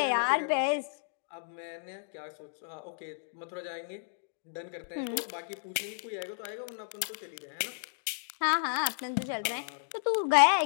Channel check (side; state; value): right; silent; digital silence